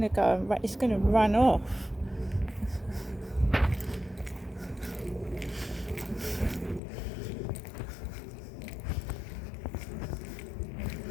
to run off.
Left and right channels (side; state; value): right; drops out; at 6.8 s